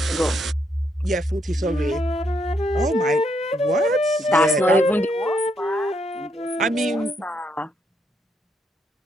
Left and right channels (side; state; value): both; normal; correlation 0.76